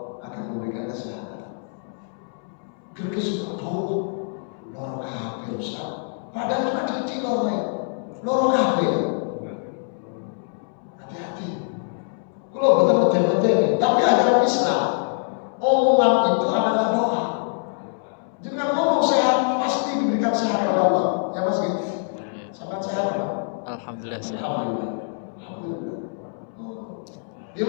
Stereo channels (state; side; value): silent; right; 62 dB below the other